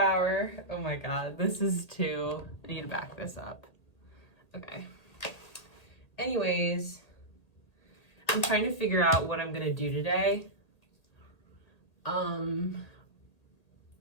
Oh my god, this is too... I need to back this up. Okay. Anyways, I'm trying to figure out what I'm gonna do today. I'm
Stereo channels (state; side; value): late; right; 2.0 ms